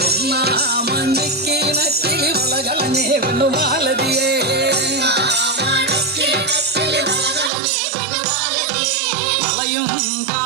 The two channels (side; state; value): left; drops out; at 7.5 s